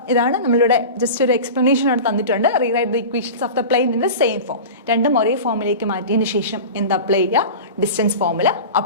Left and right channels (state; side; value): inverted; both; correlation -0.32